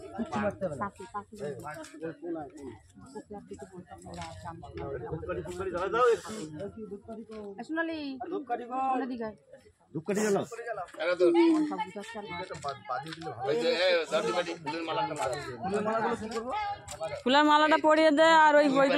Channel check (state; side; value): identical; both; correlation 1.00